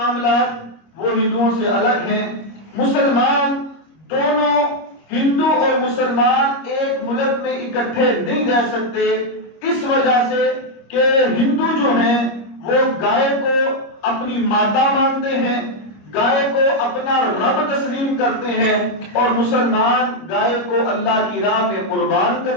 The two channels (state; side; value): late; right; 25 ms